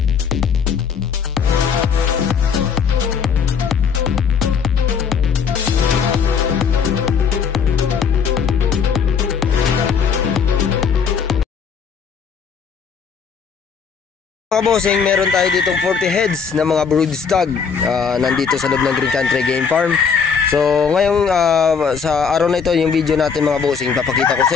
Mga bossing, meron tayo ditong 40 heads na mga broodstag nandito sa loob ng Green Country Game Farm. So ngayong sa araw na ito, yung video natin mga bossing, papakita ko sa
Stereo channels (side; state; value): right; quieter; 6.3 dB